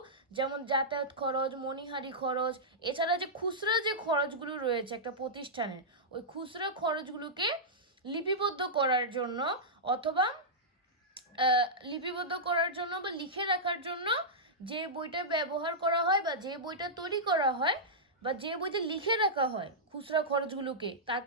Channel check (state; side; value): normal; both; correlation -0.12